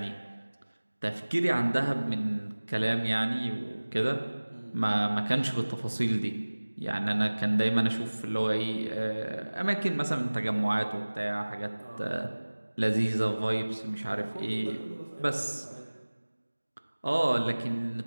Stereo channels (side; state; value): both; inverted; correlation -1.00